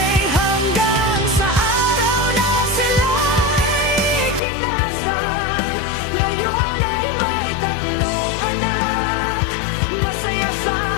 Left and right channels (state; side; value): drops out; right; at 4.4 s